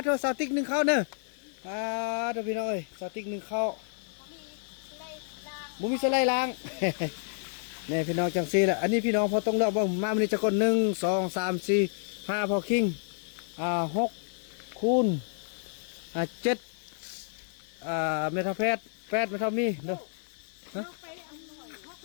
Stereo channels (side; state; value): right; silent; digital silence